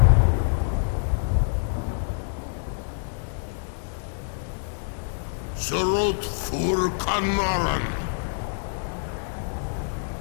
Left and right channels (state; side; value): silent; right; digital silence